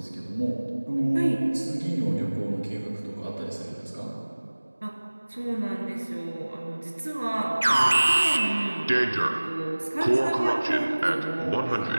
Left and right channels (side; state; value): both; inverted; correlation -1.00